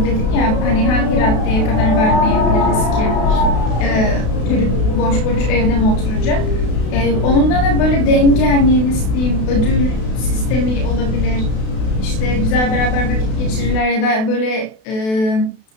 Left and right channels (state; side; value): late; right; 32 ms